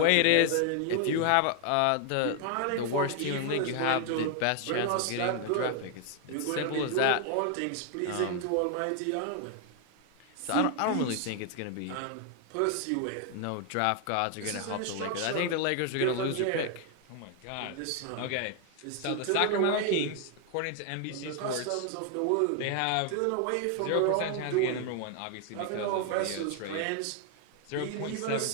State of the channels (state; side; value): different; both; correlation 0.00